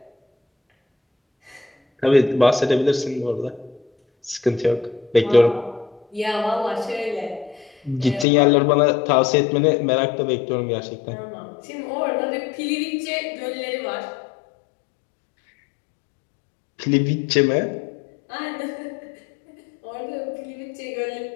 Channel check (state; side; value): drops out; right; at 8.2 s